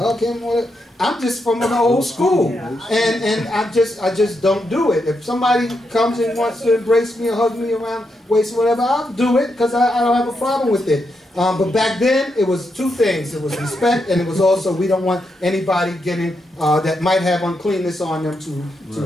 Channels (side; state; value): both; normal; correlation 0.83